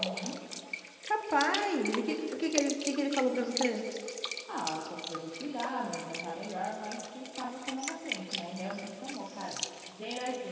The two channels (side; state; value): both; identical; correlation 1.00